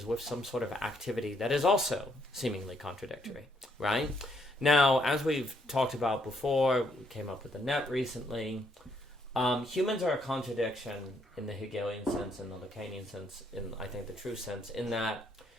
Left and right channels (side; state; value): both; normal; correlation 0.72